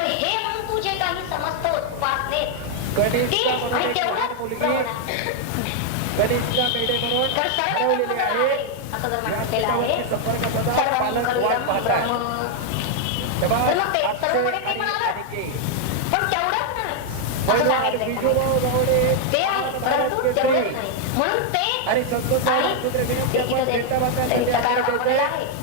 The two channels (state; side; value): different; both; correlation 0.00